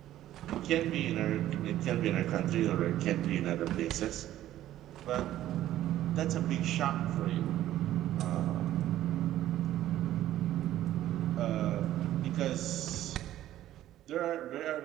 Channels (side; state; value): left; quieter; 13.3 dB